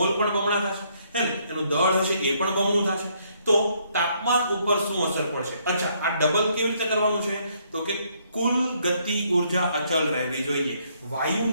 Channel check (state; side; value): inverted; both; correlation -0.70